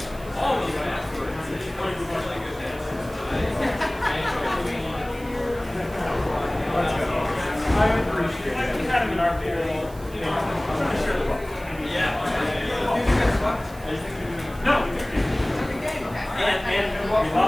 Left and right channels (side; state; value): right; noise; hiss, 21 dB below the sound